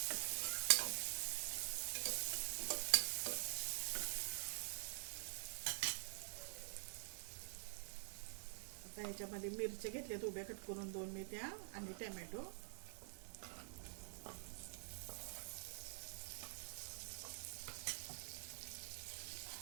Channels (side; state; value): left; silent; digital silence